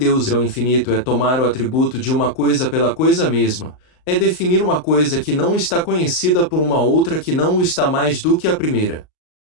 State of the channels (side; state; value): right; late; 39 ms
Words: é o infinito é tomar o atributo de uma coisa pela coisa mesma, é definir uma coisa que não está conhecida por uma outra que não o está mais do que a primeira.